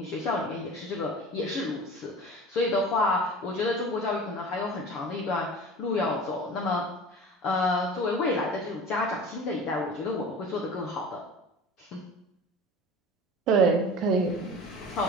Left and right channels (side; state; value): both; normal; correlation 0.37